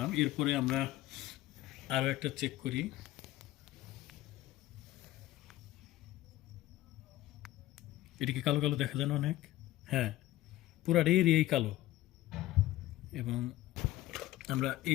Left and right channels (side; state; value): right; quieter; 15.5 dB